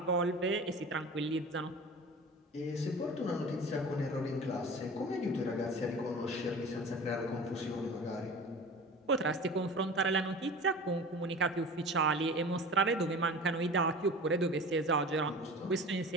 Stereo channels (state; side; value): normal; both; correlation 0.37